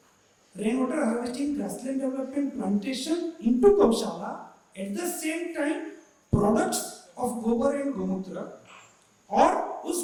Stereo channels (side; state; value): both; identical; correlation 1.00